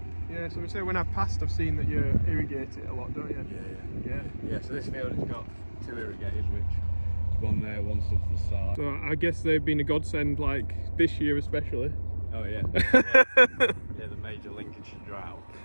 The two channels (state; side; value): inverted; both; correlation -1.00